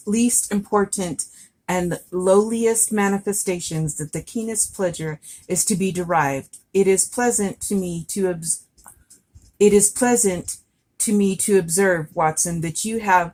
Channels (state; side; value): identical; both; correlation 1.00